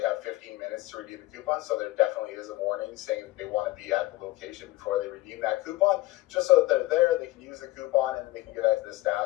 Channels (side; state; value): right; quieter; 18.3 dB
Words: have 15 minutes to redeem the coupon, so there definitely is a warning saying that they want to be at the location before they redeem that coupon, just so that they're there, they can use the coupon, and then they can give that to the